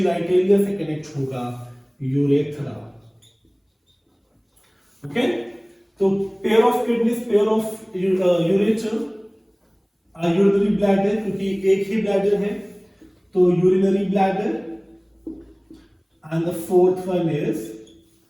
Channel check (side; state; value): both; identical; correlation 1.00